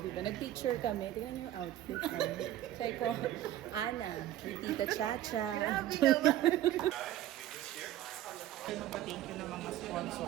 Diba, nag-picture kami. Tingnan niyo yung outfit. So I call Ana, Tita Chacha. Thank you ng mga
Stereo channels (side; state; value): left; quieter; 13.1 dB